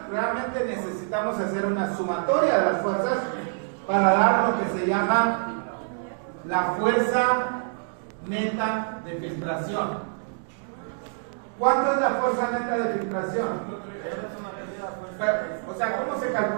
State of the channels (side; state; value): left; silent; digital silence